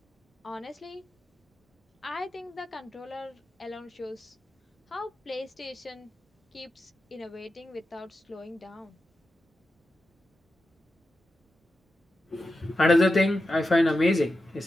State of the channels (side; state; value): both; normal; correlation 0.90